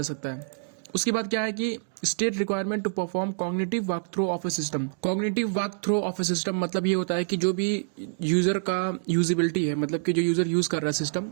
सकता है। उसके बाद क्या है कि state requirement to perform cognitive walk through of a system. Cognitive walk through of a system मतलब ये होता है कि जो भी यूजर का यूजिबिलिटी है, मतलब कि जो यूजर यूज कर रहा है सिस्टम,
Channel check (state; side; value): silent; left; digital silence